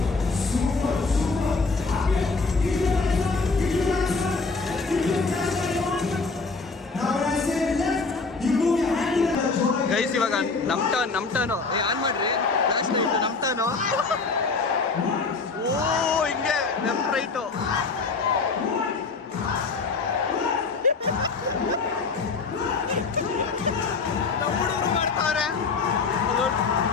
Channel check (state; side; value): quieter; right; 4.3 dB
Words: ಗೈಸ್ ಇವಾಗ ನಮ್ಮ ಟರ್ನು ಆನ್ ಮಾಡ್ರಿ ಫ್ಲಾಶ್ ಲೈಟ್. ನಮ್ಮ ಟರ್ನು. ಓ ಹಿಂಗೆ ಲೆಫ್ಟ್ ರೈಟು. ಹುಡುಗರು ಮಾಡ್ತಾವ್ರೆ.